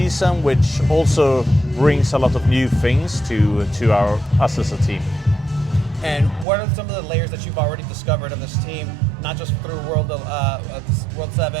which also brings a lot of new things to us as a team. And what are some of the layers that you've already discovered of this team, not just through World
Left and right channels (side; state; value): left; drops out; at 6.5 s